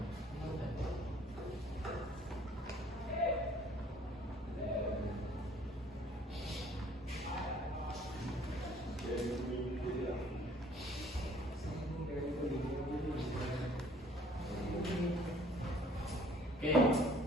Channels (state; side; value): normal; both; correlation 0.57